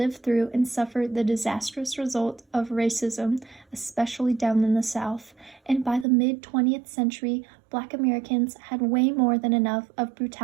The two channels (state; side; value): drops out; left; at 6.1 s